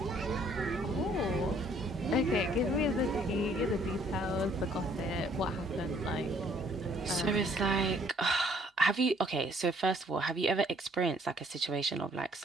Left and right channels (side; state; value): both; normal; correlation 0.62